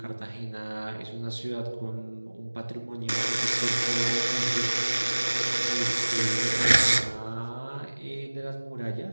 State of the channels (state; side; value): inverted; both; correlation -1.00